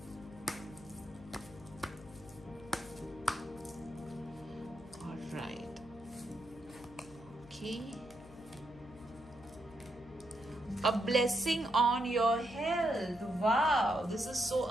All right. Okay. A blessing on your health. Wow, this is so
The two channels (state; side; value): noise; left; hum, 20 dB below the sound